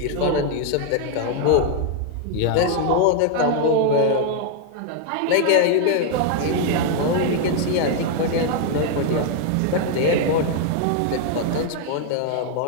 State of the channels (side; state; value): both; different; correlation 0.00